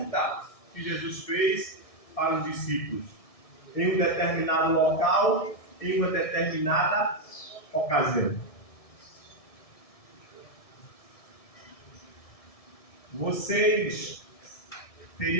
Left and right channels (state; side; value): late; right; 1.6 ms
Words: que Jesus fez para os discípulos em um determinado local, em uma determinada ocasião. Vocês